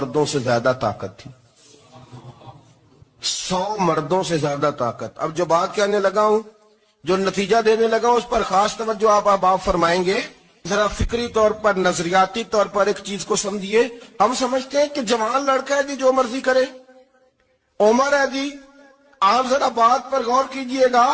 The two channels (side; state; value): both; identical; correlation 1.00